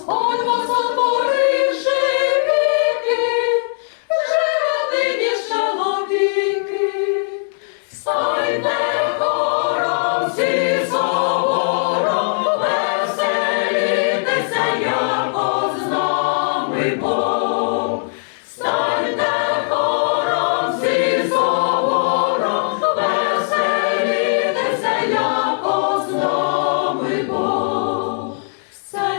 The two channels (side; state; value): right; silent; digital silence